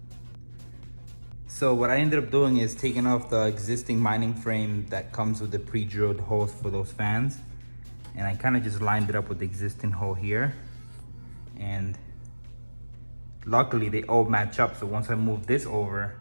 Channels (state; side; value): inverted; both; correlation -1.00